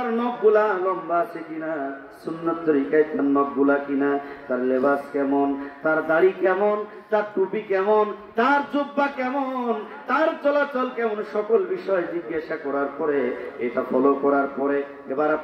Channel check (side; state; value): both; identical; correlation 1.00